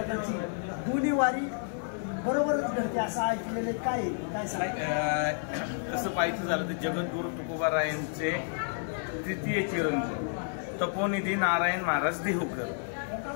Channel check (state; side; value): silent; right; 57 dB below the other